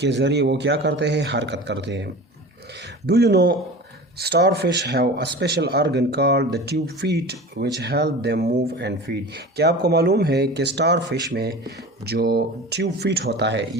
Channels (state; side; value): normal; both; correlation 0.35